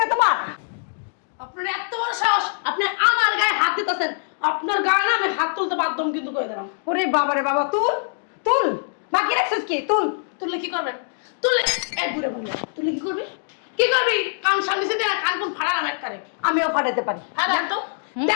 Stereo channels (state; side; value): silent; right; digital silence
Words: না তোমার? আপনার এত বড় সাহস, আপনি আমার গায়ে হাত দিতেছেন। আপনার গায়ে না আমি হাত তুলতে বাধ্য কিন্তু করে দিলাম। ওরে বাবা রে বাবা, তুল তুল, বাকি রাখছিস কি? তুল। তুললে কি করবেন? তুললে এক ঘুরে বললে তুললে কি করবি? কি করবি? কান সামনে দিয়ে কান কোন ফাড়ালাম একবারে। আমিও ফাটাতে পারি। দেন তো,